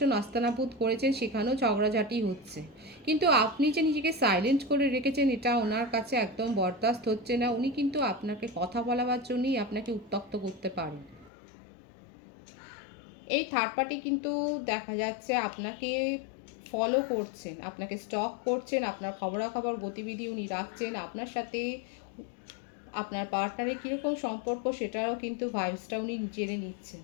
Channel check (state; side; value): drops out; right; at 11.3 s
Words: নাস্তানাবুদ করেছেন, সেখানেও ঝগড়াঝাটি হচ্ছে। কিন্তু আপনি যে নিজেকে সাইলেন্ট করে রেখেছেন এটা ওনার কাছে একদম বরদাস্ত হচ্ছে না। উনি কিন্তু আপনাকে কথা বলাবার জন্যই আপনাকে উত্ত্যক্ত করতে পারেন। এই থার্ড পার্টি কিন্তু দেখা যাচ্ছে আপনাকে ফলো করছেন, আপনাকে স্টক করছেন, আপনার খবরাখবর গতিবিধি উনি রাখছেন। আপনার সাথে আপনার পার্টনারের কীরকম সম্পর্ক সেটারও কিন্তু ভাইবসটা উনি জেনে নিচ্ছেন।